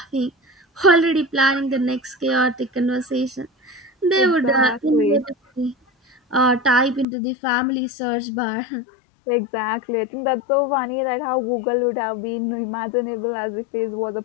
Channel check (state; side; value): drops out; right; at 7.1 s